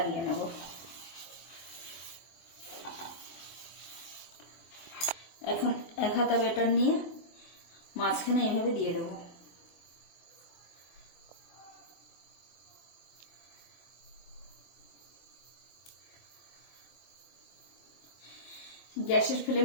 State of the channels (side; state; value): right; late; 23 ms